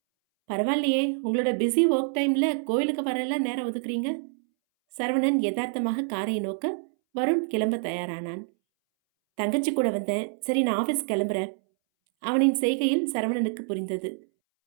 பரவாயில்லையே, உங்களோட பிஸி ஒர்க் டைமில் கோயிலுக்கு வரலாம் நேரம் ஒதுக்குறீங்க. சரவணன் யதார்த்தமாக காரை நோக்க வருண் கிளம்ப தயாரானான். தங்கச்சி கூட வந்தேன். சரி, நான் ஆஃபீஸ் கிளம்புறேன். அவனின் செய்கையில் சரவணனுக்கு புரிந்தது.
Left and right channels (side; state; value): left; silent; 61 dB below the other